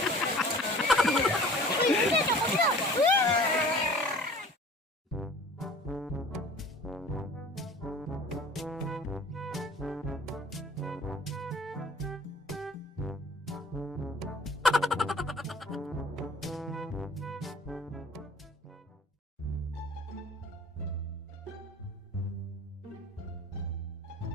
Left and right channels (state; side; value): normal; both; correlation 0.46